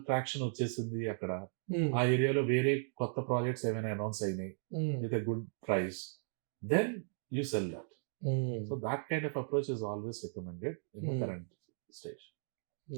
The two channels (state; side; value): silent; left; digital silence